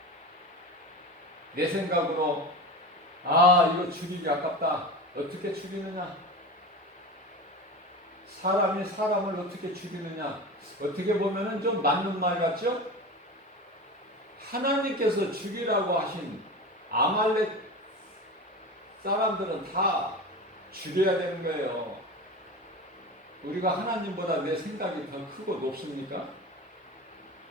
내 생각으로 이거 죽이기 아깝다. 어떻게 죽이느냐? 사람이 사람을 어떻게 죽이느냐? 어떻게 보면은 좀 맞는 말 같죠? 하나님께서 죽이라고 하신 아말렉 사람들은 다 죽여야 되는 거예요. 우리가 하나님보다 내 생각이 더 크고 높습니까?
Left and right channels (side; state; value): both; normal; correlation 0.29